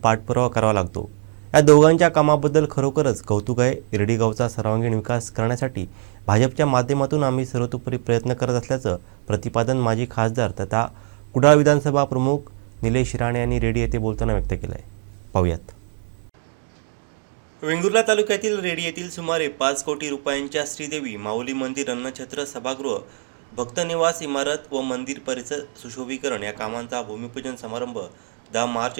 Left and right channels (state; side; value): silent; left; digital silence